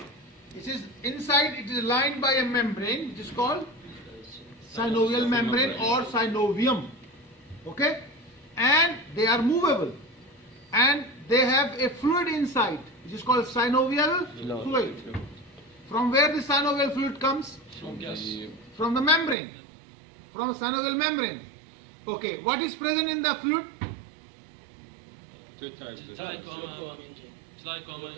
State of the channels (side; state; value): left; drops out; at 19.4 s